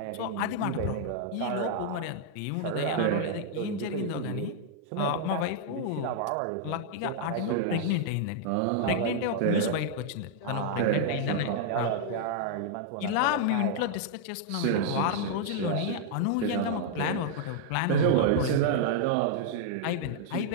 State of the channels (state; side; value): different; both; correlation -0.01